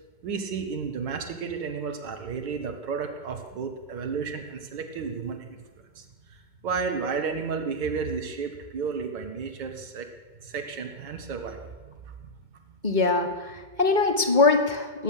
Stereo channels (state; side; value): late; left; 2.2 ms